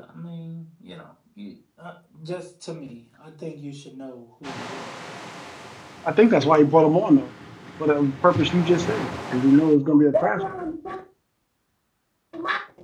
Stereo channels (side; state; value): both; identical; correlation 1.00